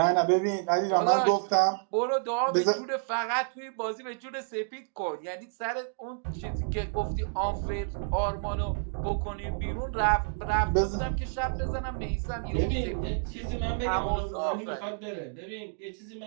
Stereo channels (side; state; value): left; silent; digital silence